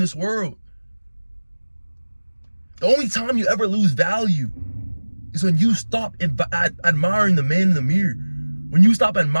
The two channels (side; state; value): both; inverted; correlation -1.00